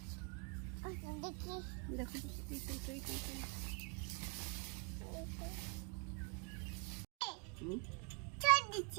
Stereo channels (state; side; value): quieter; left; 33.8 dB